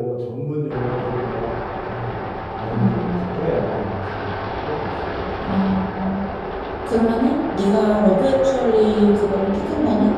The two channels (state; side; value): identical; both; correlation 1.00